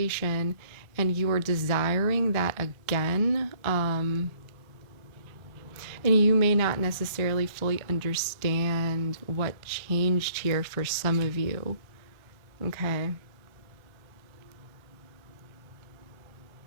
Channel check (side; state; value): left; late; 1.3 ms